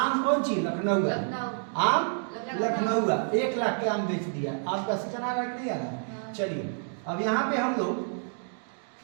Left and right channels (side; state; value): left; silent; 59 dB below the other